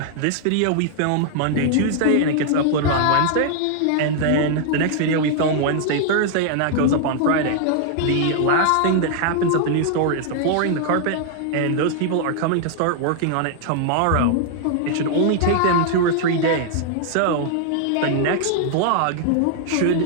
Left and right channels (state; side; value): different; both; correlation 0.00